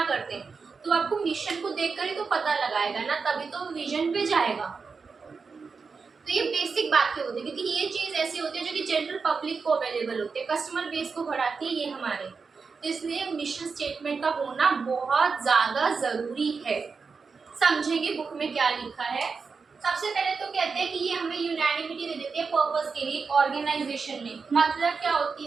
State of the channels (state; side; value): quieter; left; 5.0 dB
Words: करते हैं, तो आपको मिशन को देखकर ही तो पता लगाएगा ना, तभी तो विजन पे जाएगा। तो ये बेसिक बातें होती है, क्योंकि ये चीज ऐसी होती है जो कि जनरल पब्लिक को अवेलेबल होती है, कस्टमर बेस को बढ़ाती है ये हमारे। तो इसलिए मिशन स्टेटमेंट का होना बहुत ज़्यादा ज़रूरी है। समझेंगे बुक में क्या लिखा है। सबसे पहले तो कहते हैं कि ये हमें यूनैनिमिटी दे देती है पर्पस के लिए ऑर्गेनाइजेशन में। मतलब क्या